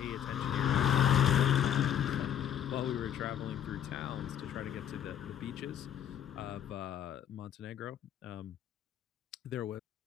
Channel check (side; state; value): right; quieter; 9.7 dB